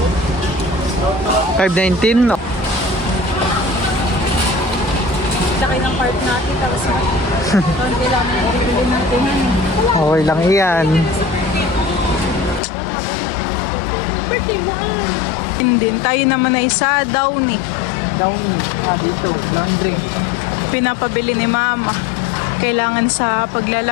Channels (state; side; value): drops out; right; at 12.6 s